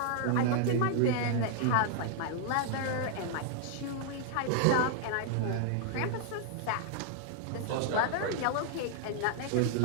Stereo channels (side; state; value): both; different; correlation -0.01